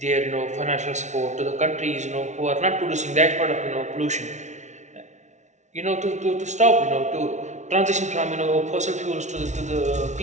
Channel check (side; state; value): left; late; 0.34 ms